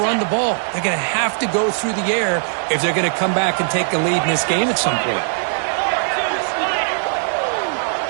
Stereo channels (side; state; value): left; silent; 66 dB below the other